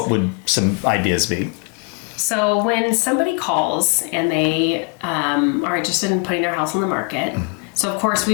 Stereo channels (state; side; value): quieter; right; 33.2 dB